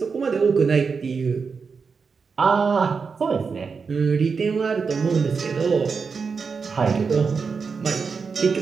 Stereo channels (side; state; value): left; quieter; 5.3 dB